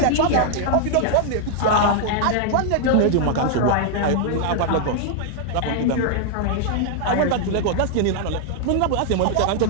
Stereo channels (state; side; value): different; both; correlation 0.00